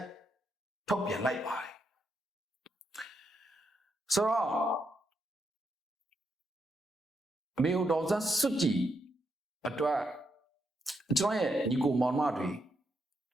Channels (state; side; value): normal; both; correlation 0.80